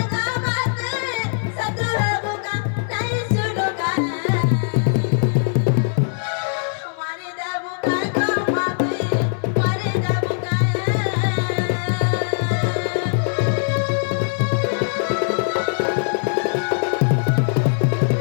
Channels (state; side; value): silent; right; 65 dB below the other